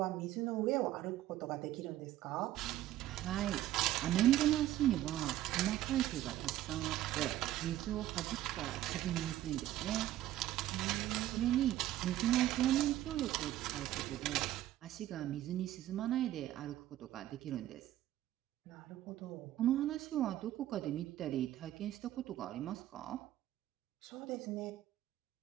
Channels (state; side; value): quieter; left; 13.7 dB